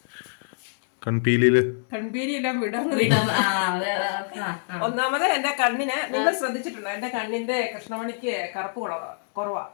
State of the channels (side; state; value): right; silent; digital silence